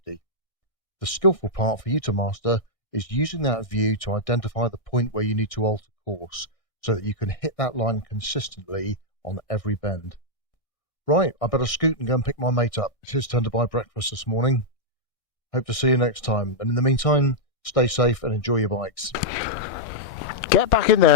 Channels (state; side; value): late; right; 1.6 ms